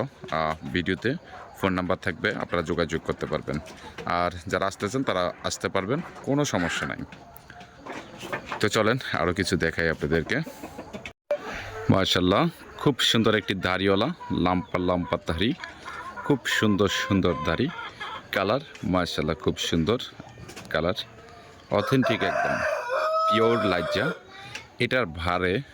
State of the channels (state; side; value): identical; both; correlation 1.00